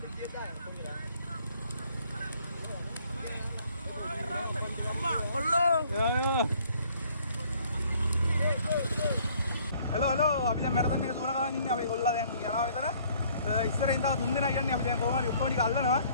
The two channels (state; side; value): inverted; both; correlation -0.59